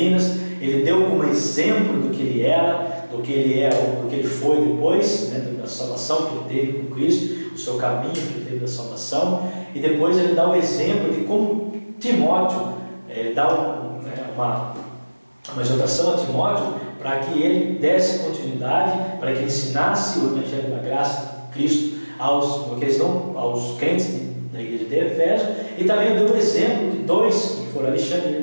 Ele deu como exemplo do que ele era, do que ele foi depois, né, da salvação que ele teve com Cristo, o seu caminho que ele teve da salvação, e depois ele dá o exemplo de como Timóteo dá uma exortação a Timóteo para que ele desse continuidade, para que ele ensinasse o Evangelho da Graça de Cristo aos crentes da igreja de Éfeso, e também deu o exemplo de dois, que foram Alexandre e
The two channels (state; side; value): inverted; both; correlation -1.00